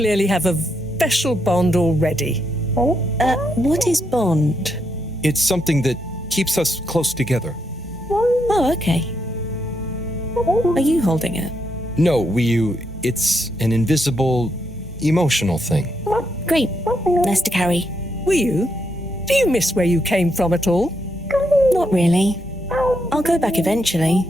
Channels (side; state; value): both; normal; correlation 0.79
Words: have a special bond already. What is bond? It's something that keeps us close together. Oh, okay. Are you holding it? No, Wiyu, it's an invisible, emotional thing. Great. Nice to carry. Wiyu, do you miss where you came from at all? Not really. I'll go back eventually,